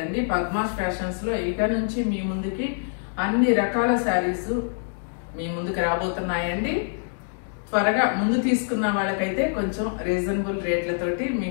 పద్మాస్ ఫ్యాషన్స్ లో ఇక నుంచి మీ ముందుకి అన్ని రకాల శారీస్ మీ ముందుకు రాబోతున్నాయండి. త్వరగా ముందు తీసుకున్న వాళ్ళకైతే కొంచెం రీజనబుల్ రేట్లతోటి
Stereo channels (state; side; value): silent; right; digital silence